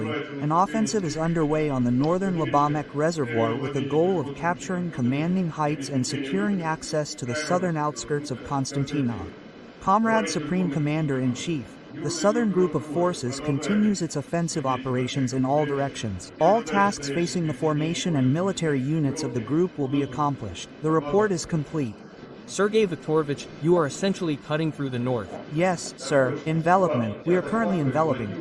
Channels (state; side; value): identical; both; correlation 1.00